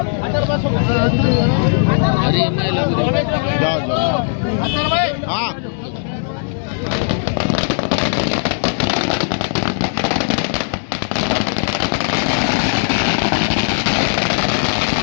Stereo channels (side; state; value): right; silent; digital silence